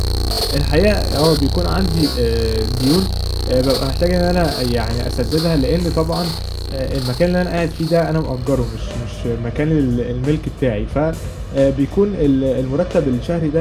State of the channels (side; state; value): both; identical; correlation 1.00